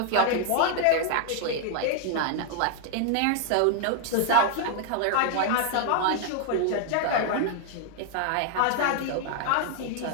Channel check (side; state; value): both; different; correlation 0.00